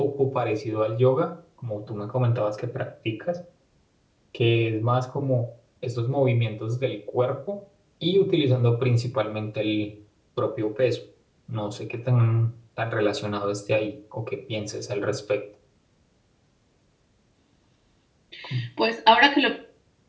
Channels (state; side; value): identical; both; correlation 1.00